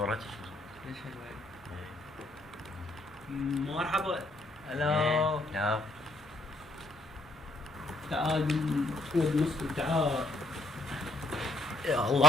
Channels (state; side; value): normal; both; correlation 0.69